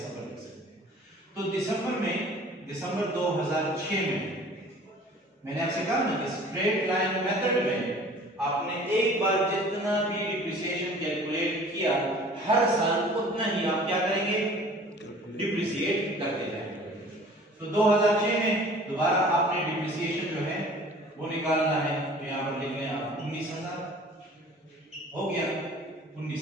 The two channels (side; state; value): both; normal; correlation 0.48